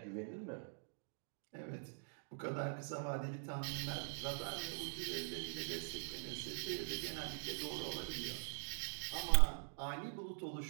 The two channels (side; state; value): left; silent; digital silence